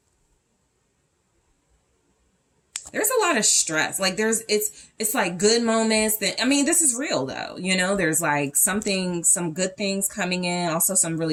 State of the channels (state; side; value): identical; both; correlation 1.00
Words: There's a lot of stress. Like it's like good moments that, I mean, this is real though. You know, there's like some good things coming in. Also some